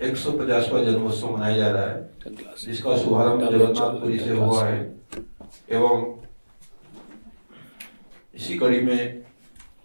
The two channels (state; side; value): inverted; both; correlation -1.00